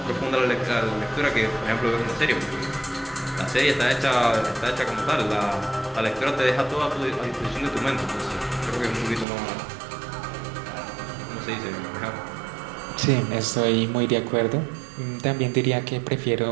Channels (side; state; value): left; drops out; at 9.2 s